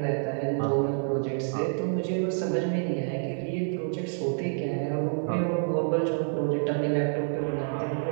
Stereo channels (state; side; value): silent; left; digital silence